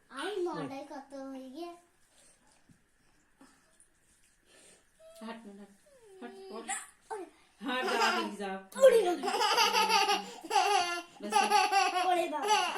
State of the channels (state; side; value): identical; both; correlation 1.00